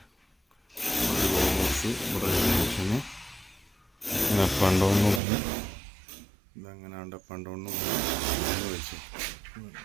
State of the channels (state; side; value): drops out; left; at 5.2 s